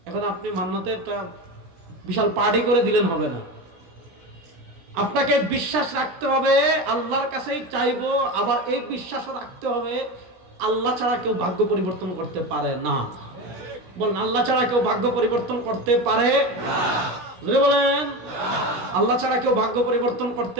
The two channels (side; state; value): left; late; 17 ms